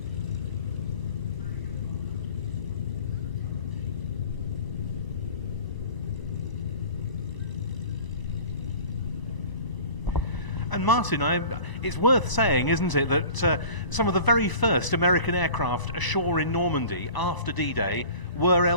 And Martin, it's worth saying, isn't it, that some of the very first American aircraft ashore in Normandy after D-Day were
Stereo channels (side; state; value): right; late; 1.0 ms